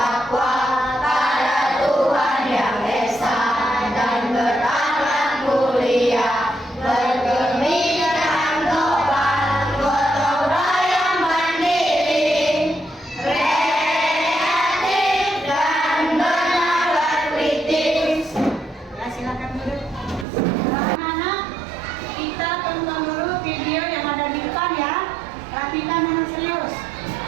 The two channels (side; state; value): left; drops out; at 20.2 s